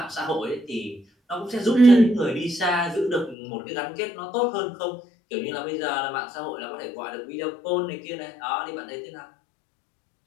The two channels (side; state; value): right; drops out; at 3.4 s